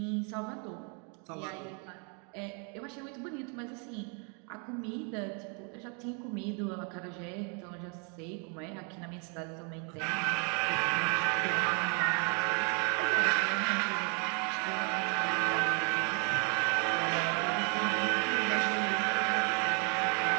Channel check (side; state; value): left; quieter; 37.7 dB